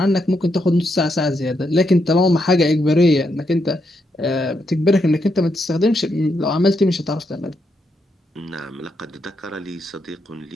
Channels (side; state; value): both; normal; correlation 0.80